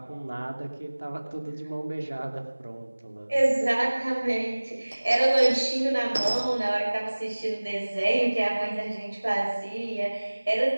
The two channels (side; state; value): both; inverted; correlation -1.00